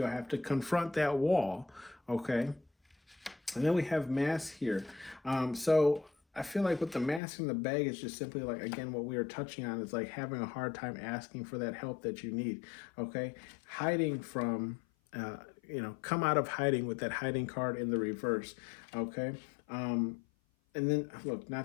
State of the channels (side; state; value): right; drops out; at 7.2 s